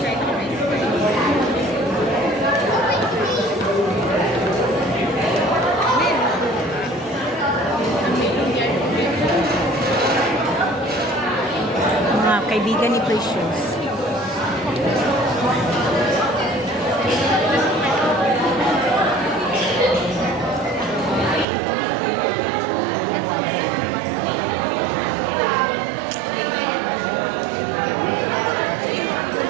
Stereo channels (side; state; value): left; drops out; at 21.5 s